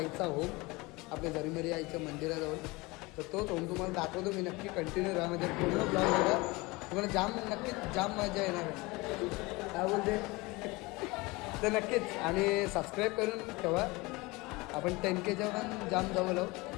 होम, आपल्या झरीमरी आईच्या मंदिराजवळ. तर तोच होम तुम्हाला दाखवतो मी. नक्की कंटिन्यू राहा म्हणजे पूर्ण ब्लॉग बघा, तुम्हाला नक्कीच जाम मजा येणार आहे. काय बोलते तर नक्कीच. आणि सबस्क्राईब करून ठेवा. आपण 10Kच्या पण जाम जवळ आहोत.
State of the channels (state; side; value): quieter; right; 23.6 dB